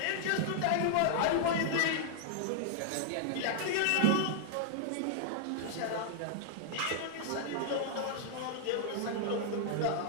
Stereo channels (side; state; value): both; different; correlation -0.01